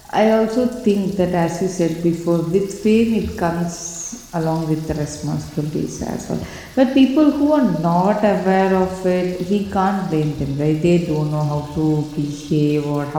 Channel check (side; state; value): both; identical; correlation 1.00